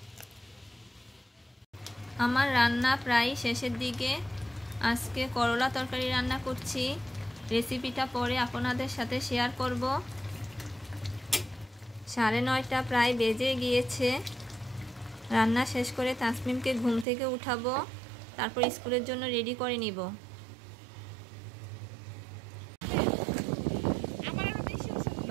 আমার রান্না প্রায় শেষের দিকে। আজকে করলা তরকারি রান্না করছি। রেসিপিটা পরে আপনাদের সাথে শেয়ার করব। 9:30 প্রায় বেজে গিয়েছে। রান্না শেষ করে তাসমিমকে ঘুম থেকে উঠাবো। তারপর স্কুলের জন্য রেডি করে নিব।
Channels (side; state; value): left; drops out; at 17.1 s